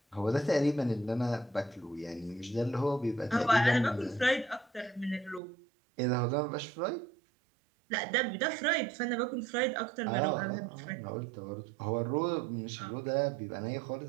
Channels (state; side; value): drops out; left; at 5.4 s